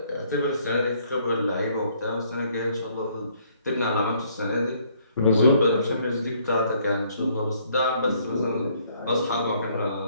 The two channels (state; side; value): inverted; both; correlation -0.65